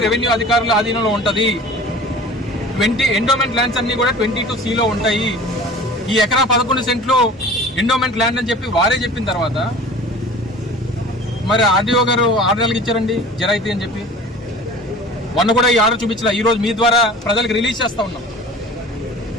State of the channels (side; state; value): both; normal; correlation 0.42